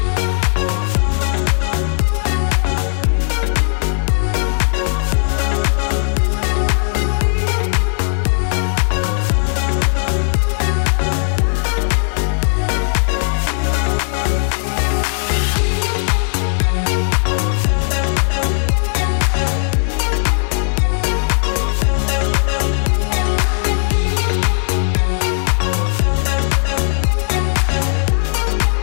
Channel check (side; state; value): right; silent; digital silence